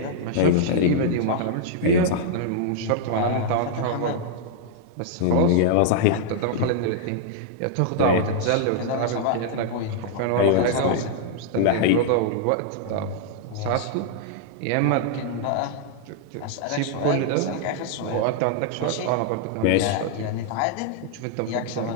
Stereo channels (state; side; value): different; both; correlation -0.01